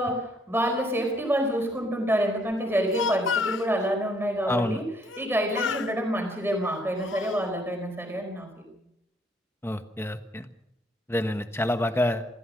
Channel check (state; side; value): normal; both; correlation 0.67